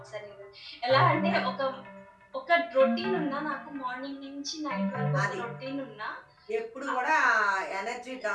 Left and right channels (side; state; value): both; identical; correlation 1.00